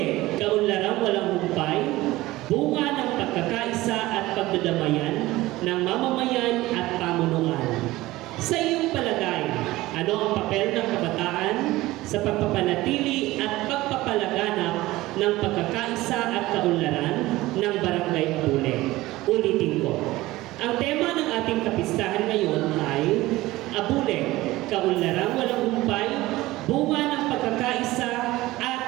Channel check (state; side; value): quieter; left; 18.2 dB